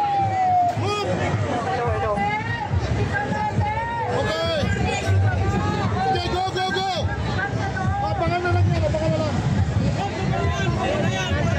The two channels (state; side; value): identical; both; correlation 1.00